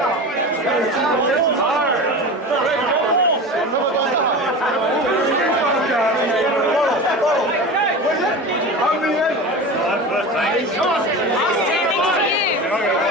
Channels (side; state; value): both; normal; correlation 0.30